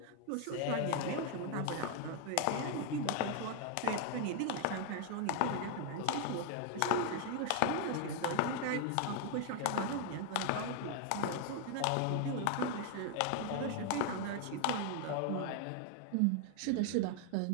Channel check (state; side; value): different; both; correlation 0.00